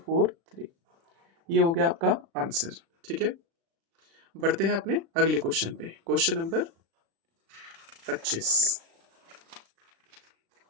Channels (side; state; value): left; late; 36 ms